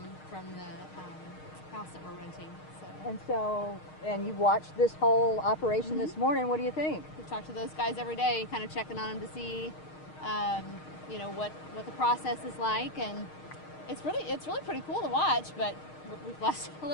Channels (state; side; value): late; right; 6.5 ms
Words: the house that we're renting. So And you watched this whole operation this morning. What do you think? we talked to those guys every day, kind of checking on them to see, you know, what the process is like. And it's really pretty cool to watch. But we've lost a